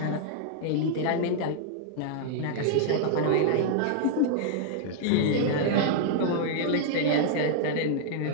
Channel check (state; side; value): different; both; correlation -0.01